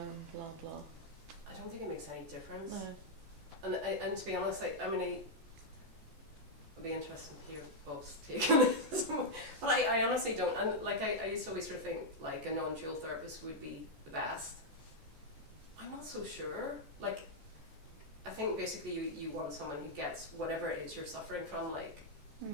blah blah? I don't think it makes any difference. No. And to be honest, I mean, it'd be interesting to hear Bob's take on this. But I honestly don't. And like, I used to always sort of think like a non-dual therapist would be the best. I'm not so sure. Like, I think basically you want someone who gets whatever it is you're suffering from, like,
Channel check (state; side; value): late; left; 14 ms